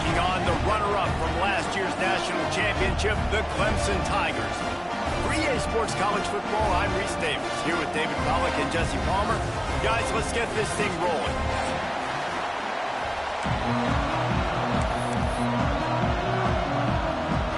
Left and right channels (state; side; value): identical; both; correlation 1.00